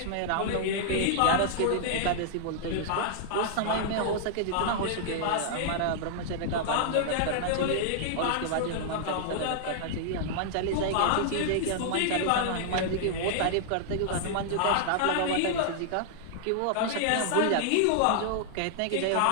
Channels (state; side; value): different; both; correlation -0.01